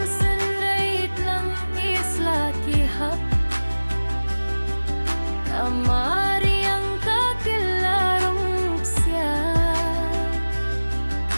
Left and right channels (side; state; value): both; inverted; correlation -1.00